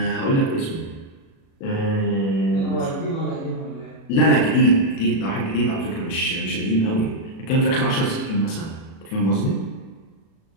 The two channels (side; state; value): right; late; 37 ms